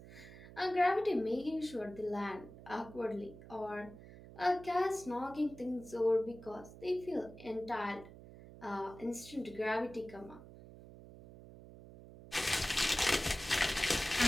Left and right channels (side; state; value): right; noise; hum, 17 dB below the sound